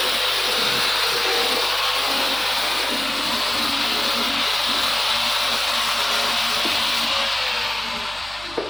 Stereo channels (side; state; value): right; noise; hum, 19 dB below the sound